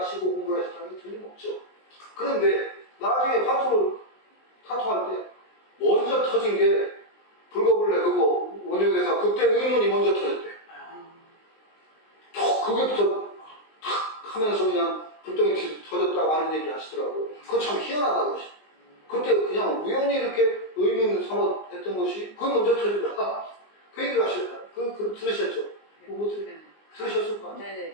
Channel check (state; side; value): late; right; 19 ms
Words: 공부를 하셨다는 게 틀림없죠. 그런데 나중에 타투할 때 먼저 터진 게 불거불레 그거 원효대사 그때 의문이 먼저 터졌대. 그게부터 탁 하면서 그냥 불덩이 터졌다고 하는 얘기 하시더라고요. 그거 참 희한하다 그러시. 그때 그냥 우연히 이렇게 의문 삼아 했던 것이 그게 먼저 터지더라. 그 얘기를 하셨다. 들으셨죠? 뭐 네. 들으셨을 거 아니에요? 네,